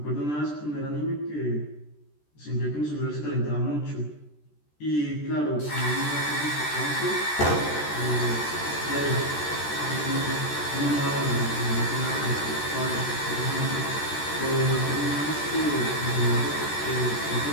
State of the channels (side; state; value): right; late; 14 ms